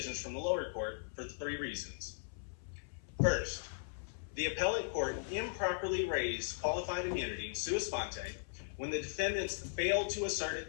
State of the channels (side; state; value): right; silent; 52 dB below the other